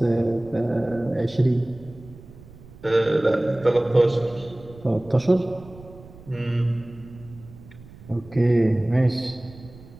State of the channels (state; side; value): noise; right; rumble, 20 dB below the sound